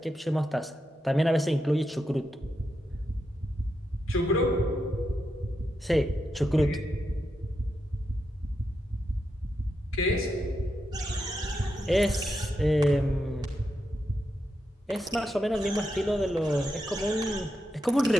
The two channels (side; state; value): both; normal; correlation 0.85